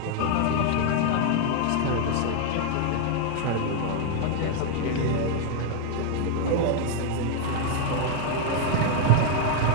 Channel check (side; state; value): both; different; correlation 0.00